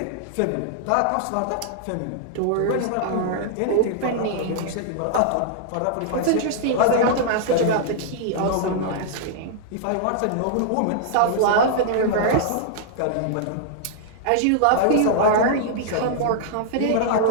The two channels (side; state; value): both; different; correlation -0.01